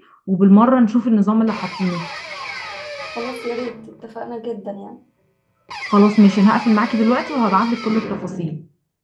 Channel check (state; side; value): identical; both; correlation 1.00